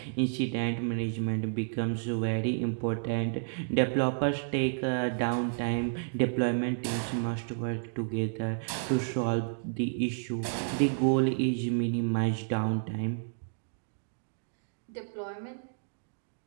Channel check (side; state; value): left; silent; digital silence